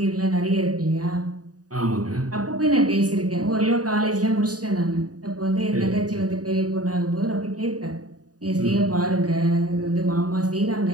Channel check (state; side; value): late; left; 0.68 ms